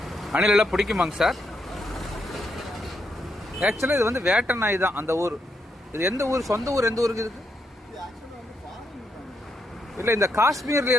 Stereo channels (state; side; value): normal; both; correlation 0.80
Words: அணில் எல்லாம் பிடிக்குமாங்க சார்? ஆக்சுவலாக இது வேட்டை நாய் தான். அந்த ஊர் இது எந்த ஊர்? சொந்த ஊர் எந்த ஊருக்கு இருக்கு? இல்லை, இந்த காஷ்மீர்ல